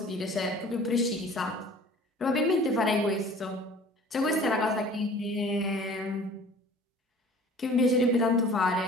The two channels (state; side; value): normal; both; correlation 0.47